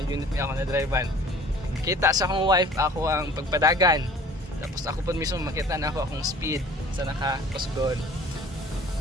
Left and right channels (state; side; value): normal; both; correlation 0.48